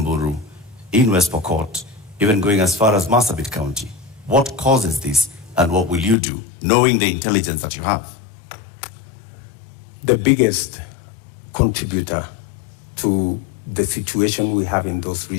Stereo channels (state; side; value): drops out; right; at 6.2 s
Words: in West Pokot, even going as far as Marsabit County? What causes this, and what will you do, knowing the intelligence that you have? The biggest contributor to the situation we have in those